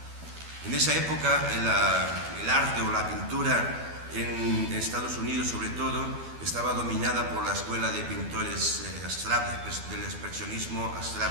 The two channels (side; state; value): left; late; 12 ms